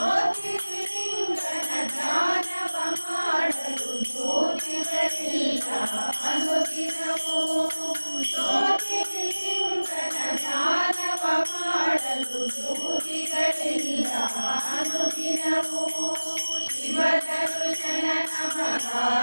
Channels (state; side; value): inverted; both; correlation -1.00